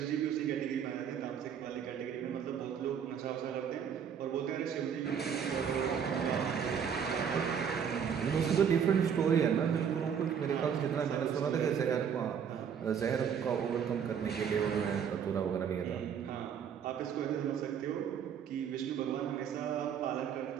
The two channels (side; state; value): left; quieter; 7.8 dB